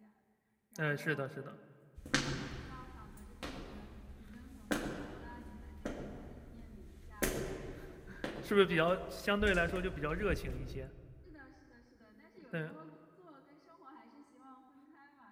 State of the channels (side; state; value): both; identical; correlation 1.00